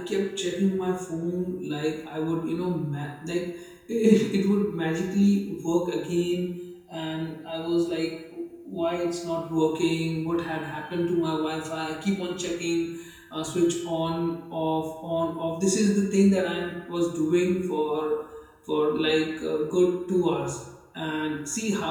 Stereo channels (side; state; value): both; identical; correlation 1.00